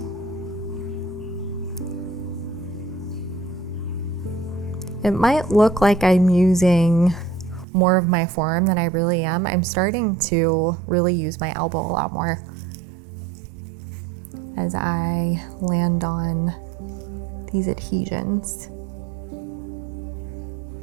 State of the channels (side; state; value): left; drops out; at 7.7 s